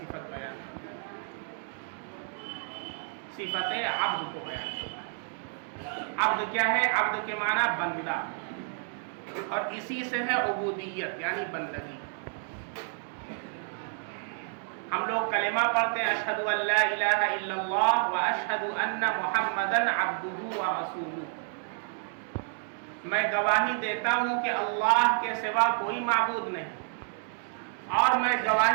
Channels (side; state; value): left; silent; 58 dB below the other